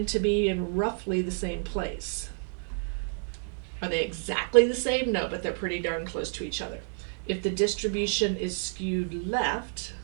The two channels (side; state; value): left; silent; 58 dB below the other